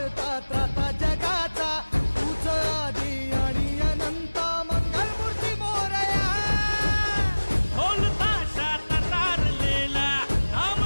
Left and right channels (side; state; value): both; inverted; correlation -1.00